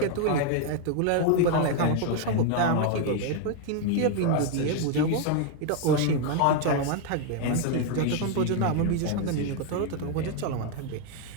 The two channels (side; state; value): both; different; correlation 0.00